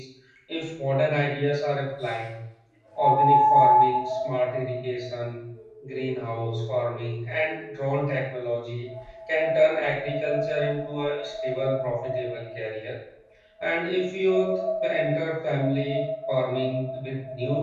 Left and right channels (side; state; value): both; identical; correlation 1.00